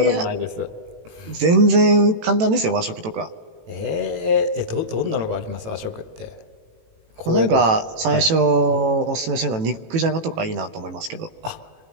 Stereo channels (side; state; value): left; late; 18 ms